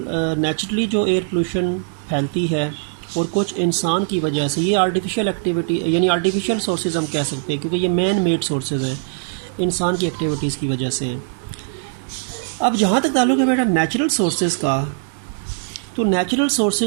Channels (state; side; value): silent; left; digital silence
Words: जो एयर पोल्यूशन फैलती है, और कुछ इंसान की वजह से। ये आर्टिफिशियल एक्टिविटी यानी आर्टिफिशियल सोर्सेज हम कह सकते हैं, क्योंकि ये मैन मेड सोर्सेज हैं, इंसान की एक्टिविटीज़ की वजह से हैं। अब जहाँ तक ताल्लुक़ है बेटा नेचुरल सोर्सेज का, तो नेचुरल